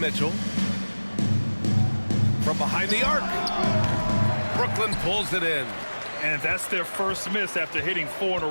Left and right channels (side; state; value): both; inverted; correlation -1.00